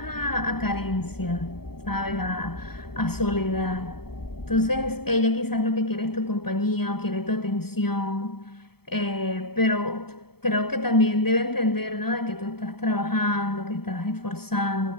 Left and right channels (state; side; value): late; right; 0.96 ms